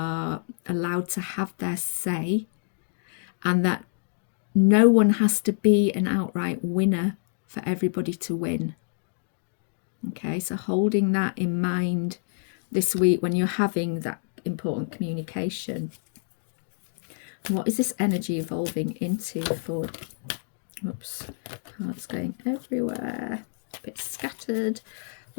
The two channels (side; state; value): right; silent; digital silence